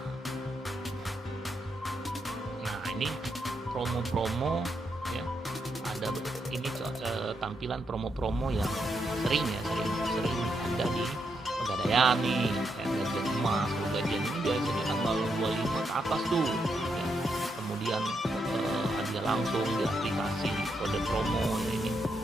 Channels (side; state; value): both; normal; correlation 0.81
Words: Nah, ini promo-promo ya, ada ini tampilan promo-promo yang sering ada di Pegadaian nih, gajian emas. Gajian ini biasanya tanggal 25 ke atas tuh ya. Kemudian hadiah langsung di aplikasi, kode promo ya ini,